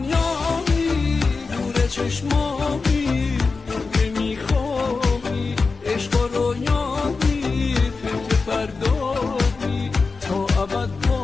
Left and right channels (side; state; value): right; quieter; 4.3 dB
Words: دور چشمامی، که میخوابی عشق و رویامی، فکر فردامی تا ابد